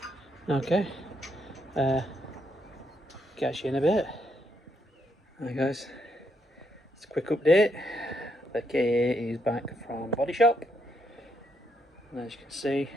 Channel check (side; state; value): both; normal; correlation 0.77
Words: Okay, catch you in a bit. Hi guys, it's a quick update. The KA is back from body shop, and as you can see,